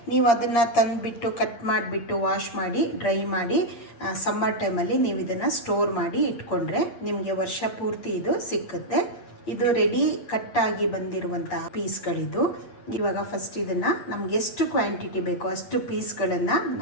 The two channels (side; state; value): right; late; 8.7 ms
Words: ನೀವು ಅದನ್ನು ತಂದುಬಿಟ್ಟು ಕಟ್ ಮಾಡಿಬಿಟ್ಟು ವಾಶ್ ಮಾಡಿ ಡ್ರೈ ಮಾಡಿ ಸಮ್ಮರ್ ಟೈಮಲ್ಲಿ ನೀವು ಇದನ್ನು ಸ್ಟೋರ್ ಮಾಡಿ ಇಟ್ಕೊಂಡ್ರೆ ನಿಮಗೆ ವರ್ಷ ಪೂರ್ತಿ ಇದು ಸಿಕ್ಕುತ್ತೆ. ಇದು ರೆಡಿ ಕಟ್ಟಾಗಿ ಬಂದಿರುವಂತಹ ಪೀಸ್ಗಳಿದು. ಇವಾಗ ಫಸ್ಟ್ ಇದನ್ನು ನಮ್ಗೆ ಎಷ್ಟು ಕ್ವಾಂಟಿಟಿ ಬೇಕೋ ಅಷ್ಟು ಪೀಸ್ಗಳನ್ನು